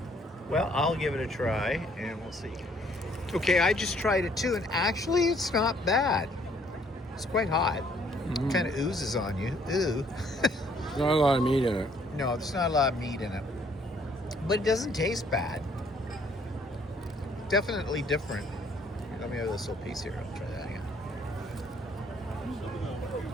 Well, I'll give it a try, and we'll see. Okay, I just tried it too, and actually it's not bad. It's quite hot. It kind of oozes on you. Ooh. There's not a lot of meat in it. No, there's not a lot of meat in it. But it doesn't taste bad. Definitely different. Let me have this little piece here. I'll try that again.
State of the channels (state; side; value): normal; both; correlation 0.63